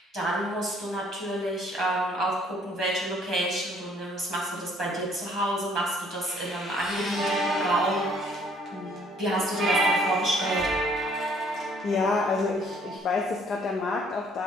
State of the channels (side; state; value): both; normal; correlation 0.61